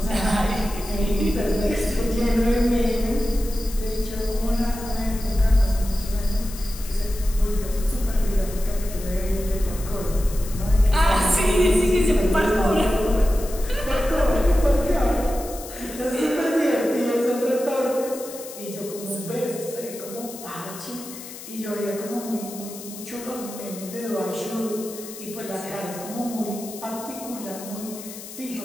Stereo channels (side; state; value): left; noise; hiss, 13 dB below the sound